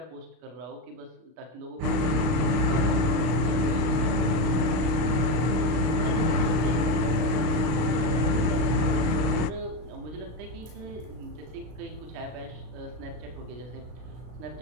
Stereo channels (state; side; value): late; left; 32 ms